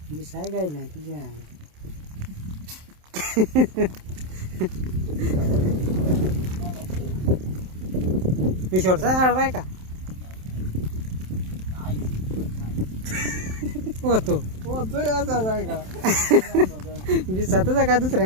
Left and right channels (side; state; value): left; late; 27 ms